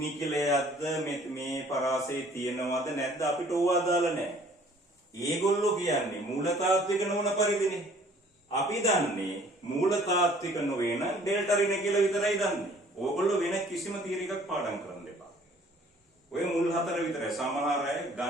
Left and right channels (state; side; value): normal; both; correlation 0.55